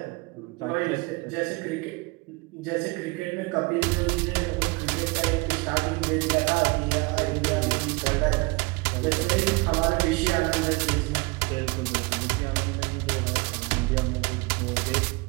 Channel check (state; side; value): quieter; left; 26.2 dB